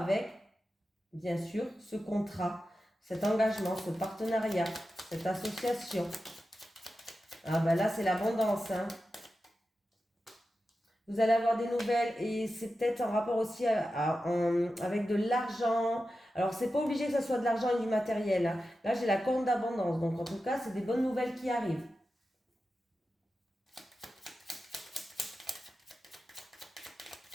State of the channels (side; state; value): both; normal; correlation 0.92